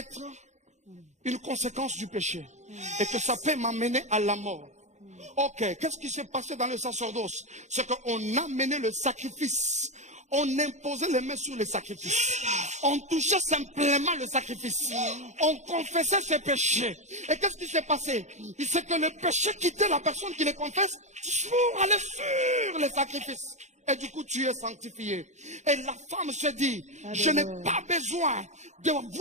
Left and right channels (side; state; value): left; late; 0.34 ms